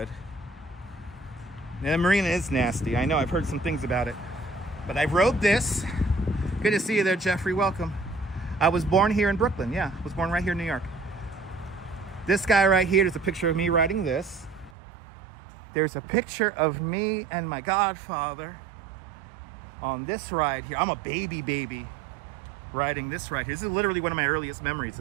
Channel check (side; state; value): left; drops out; at 14.7 s